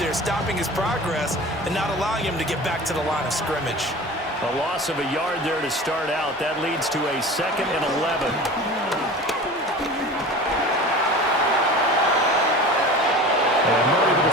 stopping his progress and not allowing him to get back to the line of scrimmage. A loss of a yard there to start out. That leads to a 2nd and 11. And Murray with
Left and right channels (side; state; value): both; normal; correlation 0.36